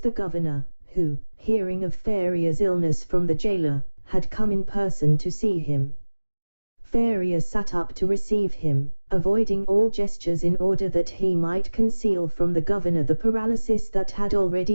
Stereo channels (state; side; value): inverted; both; correlation -1.00